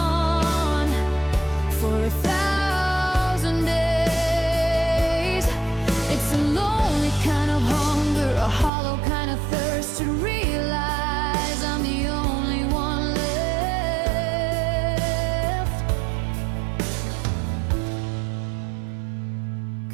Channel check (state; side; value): drops out; left; at 8.7 s